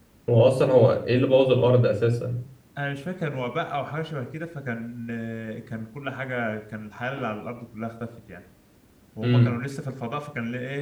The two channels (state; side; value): identical; both; correlation 1.00